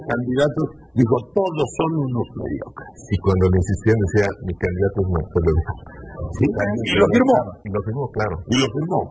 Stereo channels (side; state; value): both; identical; correlation 1.00